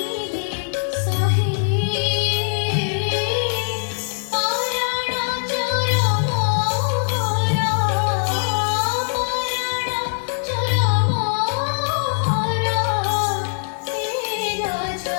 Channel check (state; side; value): silent; right; digital silence